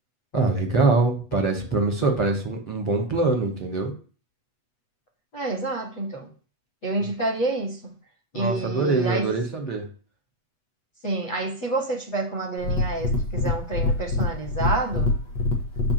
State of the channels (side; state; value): right; late; 8.2 ms